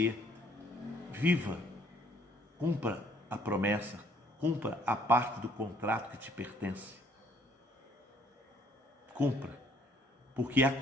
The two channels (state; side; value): normal; both; correlation 0.62